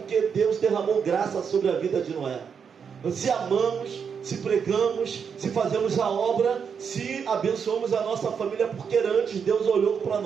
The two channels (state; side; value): quieter; left; 6.7 dB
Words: Deus derramou graça sobre a vida de Noé. Se amamos, se pregamos, se fazemos a obra, se abençoamos a nossa família, porque antes Deus olhou para